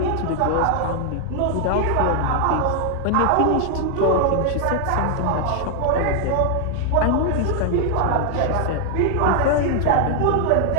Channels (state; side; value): different; both; correlation 0.00